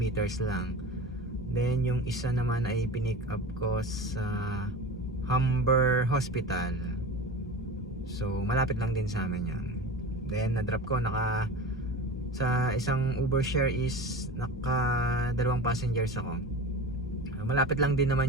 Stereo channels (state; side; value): normal; both; correlation 0.31